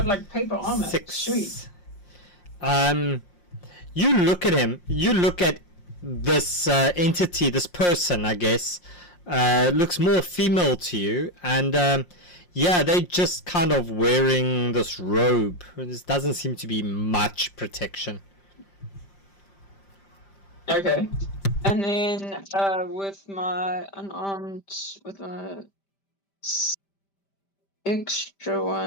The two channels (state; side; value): late; right; 5.6 ms